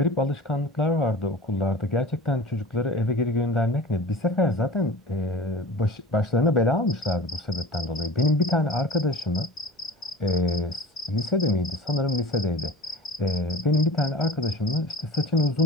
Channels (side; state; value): both; normal; correlation 0.39